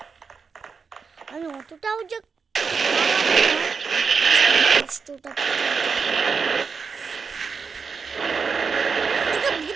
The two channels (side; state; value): left; quieter; 5.4 dB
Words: আমি, অতটাও যে কষ্টটা